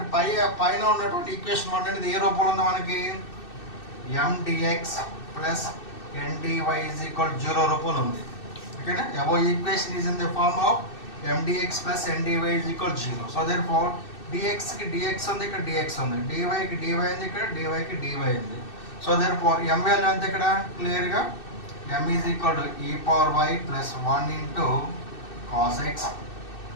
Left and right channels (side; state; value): right; late; 2.6 ms